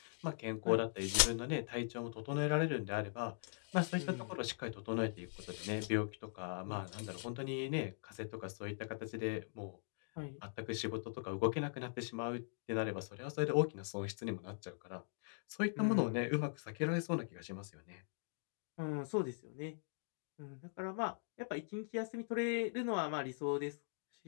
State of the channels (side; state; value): right; silent; digital silence